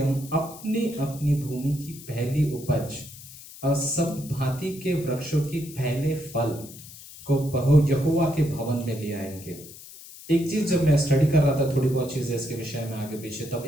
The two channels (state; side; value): noise; left; hiss, 17 dB below the sound